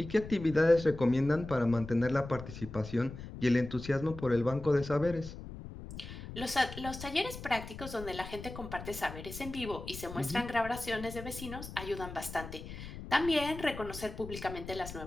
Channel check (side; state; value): left; noise; rumble, 11 dB below the sound